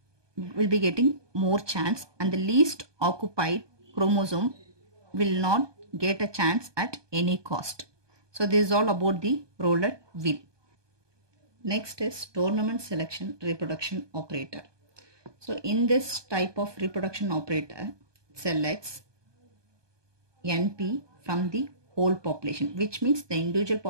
more chance, and the least occupied chromosome will not get a chance at any cost. So this is all about the roulette wheel. Next is tournament selection reproduction operator. So in this type of reproduction operator, selects NP from the whole population, which means the individual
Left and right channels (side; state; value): left; late; 1.2 ms